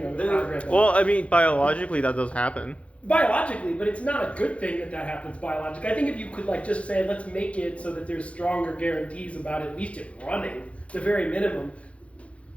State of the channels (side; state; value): right; late; 0.062 ms